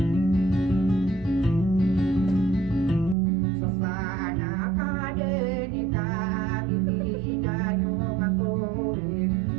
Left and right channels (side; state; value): left; drops out; at 3.2 s